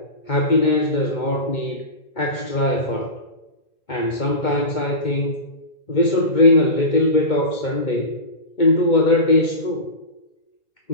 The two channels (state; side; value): late; right; 2.2 ms